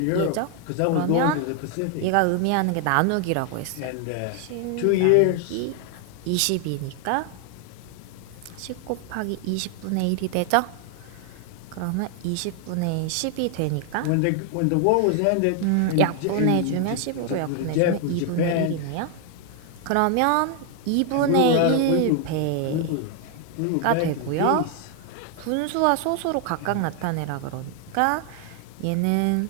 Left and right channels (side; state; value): both; different; correlation 0.00